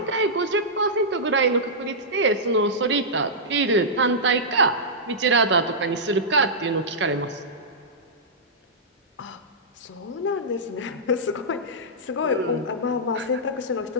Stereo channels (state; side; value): normal; both; correlation -0.12